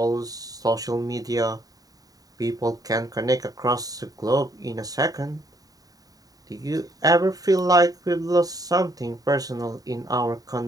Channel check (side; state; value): left; late; 0.18 ms